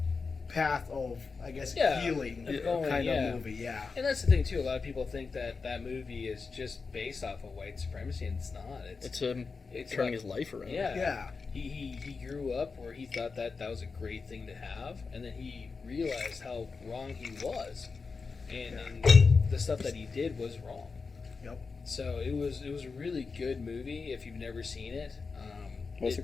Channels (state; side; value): quieter; right; 4.7 dB